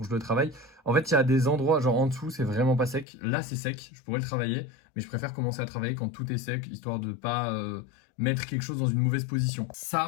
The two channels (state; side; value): drops out; right; at 3.1 s